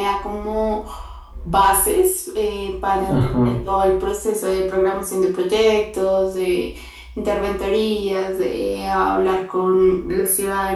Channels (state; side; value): identical; both; correlation 1.00